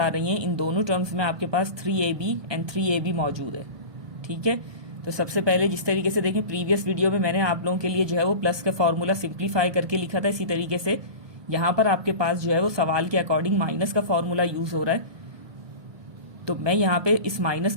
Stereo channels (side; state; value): left; late; 1.5 ms